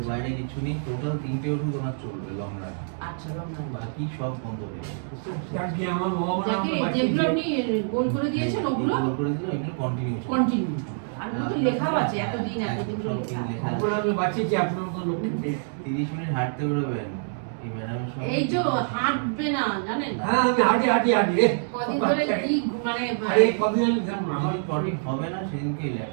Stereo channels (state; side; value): silent; left; digital silence